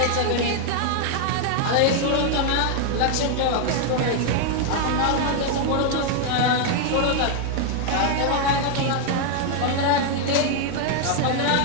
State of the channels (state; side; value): different; both; correlation 0.00